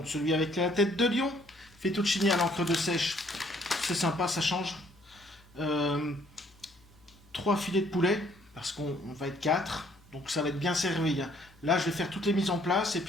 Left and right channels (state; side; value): noise; left; hum, 29 dB below the sound